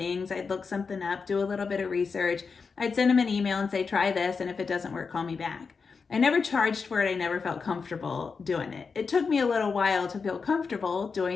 I'd look something up, do a little bit of research. I'd send them an email and say, try this, and if it doesn't work, call me back. I never charged for it. I never felt comfortable doing it. It took me a little while to feel comfortable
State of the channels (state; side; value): quieter; right; 5.1 dB